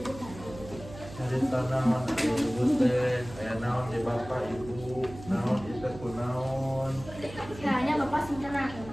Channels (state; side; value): noise; right; hum, 15 dB below the sound